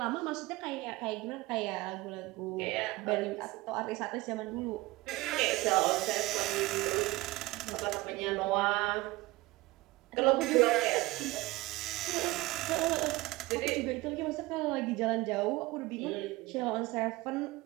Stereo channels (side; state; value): left; quieter; 20.6 dB